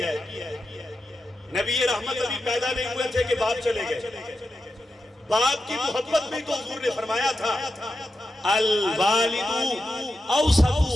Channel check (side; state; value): both; normal; correlation 0.89